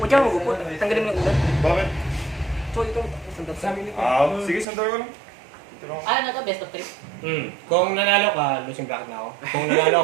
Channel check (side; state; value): left; drops out; at 4.7 s